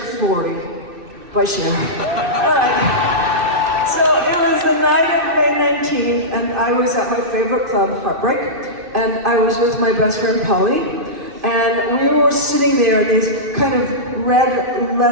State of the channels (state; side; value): late; left; 2.6 ms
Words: by CHER. All right. So it was the night of May 19th, and I was at my favorite club, Heartbreak, and I was with my best friend, Polly. And we were sitting there in these kind of red